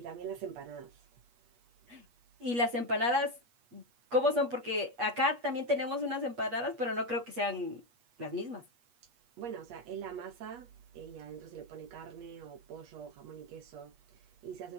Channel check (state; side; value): late; left; 8.3 ms